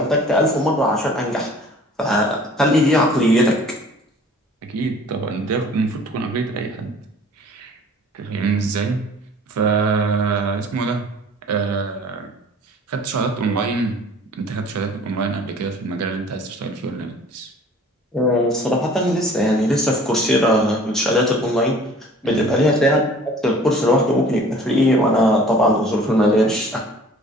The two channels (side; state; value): both; normal; correlation 0.49